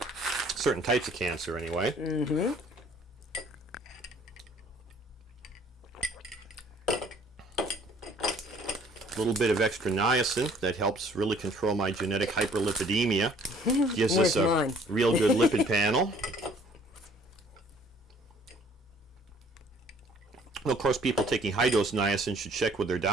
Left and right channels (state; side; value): normal; both; correlation 0.57